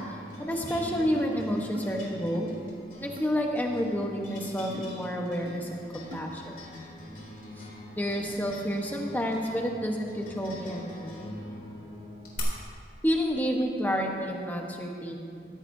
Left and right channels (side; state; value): both; normal; correlation 0.77